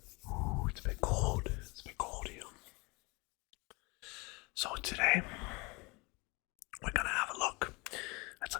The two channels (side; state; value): right; quieter; 26.8 dB